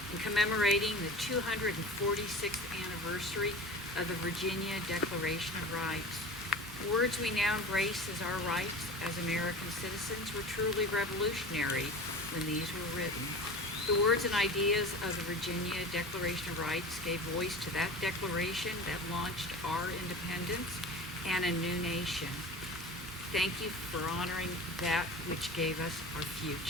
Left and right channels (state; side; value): normal; both; correlation 0.36